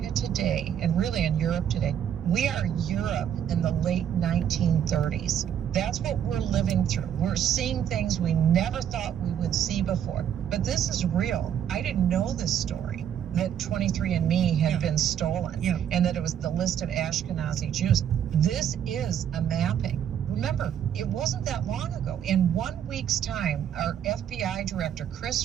today, and really in Europe today, we are Europe in the late 1930s. That's what we're living through. We're seeing things we never thought we would see before. But this is real. I didn't know this story, that 23andMe had been stolen, and that it was the list of Ashkenazi Jews. This is a mapping. Remember, it wasn't that long ago. In 1 week's time, our FBI director,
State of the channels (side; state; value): left; quieter; 9.4 dB